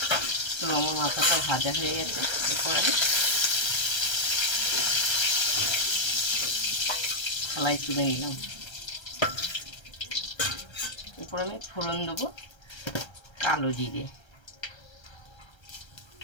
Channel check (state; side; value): late; right; 1.3 ms